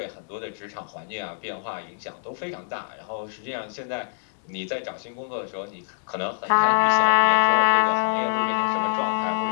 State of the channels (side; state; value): right; silent; 62 dB below the other